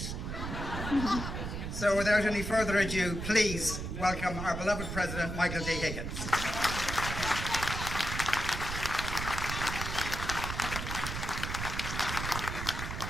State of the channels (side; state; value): right; noise; rumble, 5 dB below the sound